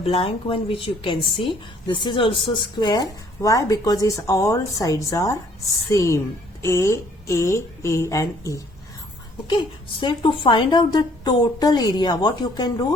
one which you can see, this is also square. Why? Because its all sides are same, A and E. Okay, so to find out the total area, what you can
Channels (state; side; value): normal; both; correlation 0.61